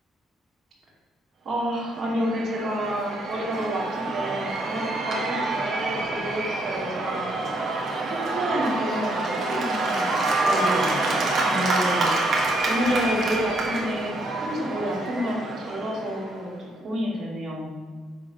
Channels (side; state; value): both; normal; correlation 0.72